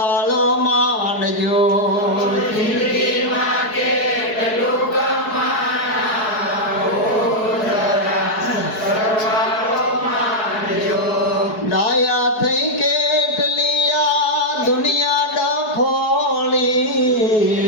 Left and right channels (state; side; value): late; right; 4.7 ms